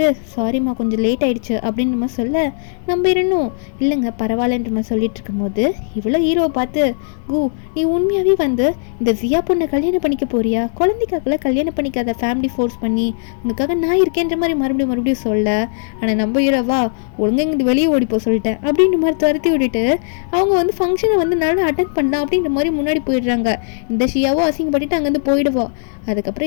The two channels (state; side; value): silent; right; digital silence